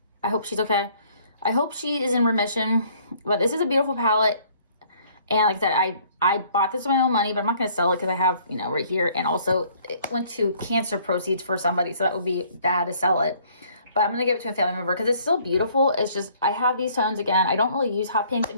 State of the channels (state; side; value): inverted; both; correlation -0.60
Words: I hope she's okay. I hope she is in remission. But this is a beautiful palette. And like I said, I bought this with my own money, but I'm not going to sell it because I have, you know, right here. And also it went to cancer proceeds for somebody. So that would be bad to sell it. But I'm going to give it to a family member because it's still beautiful. It's just, I have these tones again. I don't really use hot pinks. It